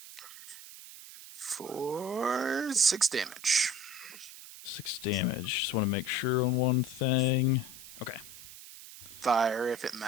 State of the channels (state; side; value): noise; right; hiss, 15 dB below the sound